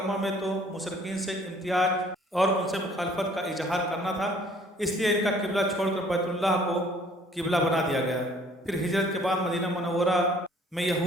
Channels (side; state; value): both; normal; correlation 0.57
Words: میں تو مشرکین سے امتیاز اور ان سے مخالفت کا اظہار کرنا تھا، اس لیے ان کا قبلہ چھوڑ کر بیت اللہ کو قبلہ بنا دیا گیا۔ پھر ہجرت کے بعد مدینہ منورہ میں